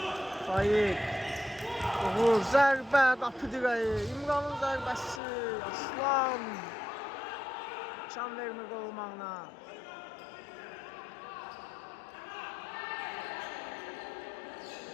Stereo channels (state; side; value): drops out; right; at 5.2 s